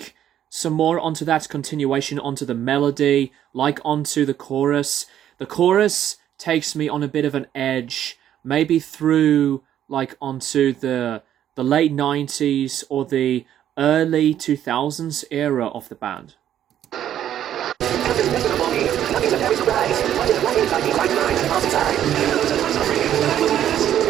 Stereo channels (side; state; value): left; quieter; 10.8 dB